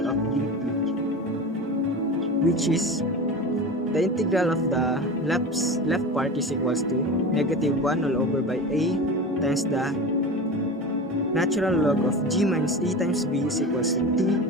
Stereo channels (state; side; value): normal; both; correlation 0.29